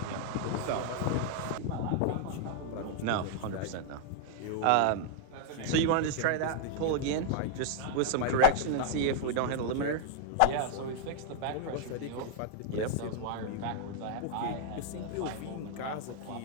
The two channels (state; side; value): different; both; correlation -0.01